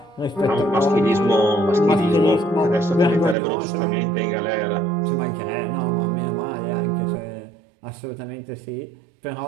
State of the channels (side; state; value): left; drops out; at 3.4 s